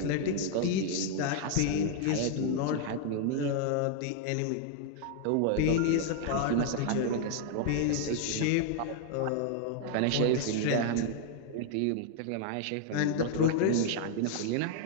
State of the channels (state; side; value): different; both; correlation 0.00